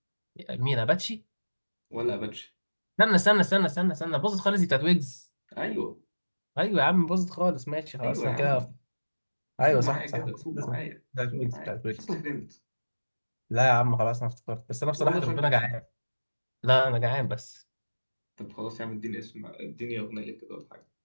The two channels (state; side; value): inverted; both; correlation -1.00